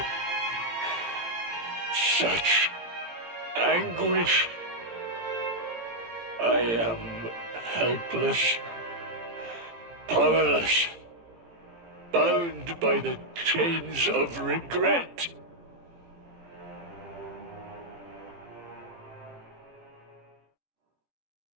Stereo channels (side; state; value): left; late; 18 ms